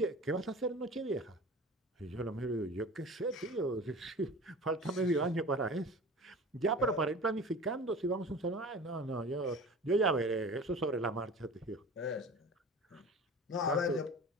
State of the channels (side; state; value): both; normal; correlation 0.37